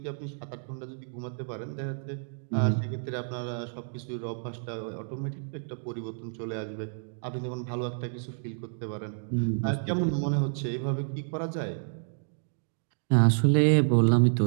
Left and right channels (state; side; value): silent; left; digital silence